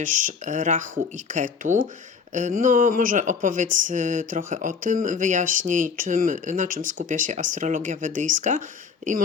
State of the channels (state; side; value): quieter; right; 5.8 dB